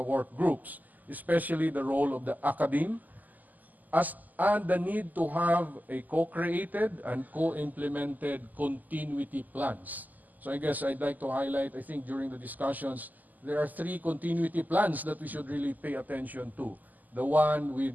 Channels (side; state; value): left; late; 0.082 ms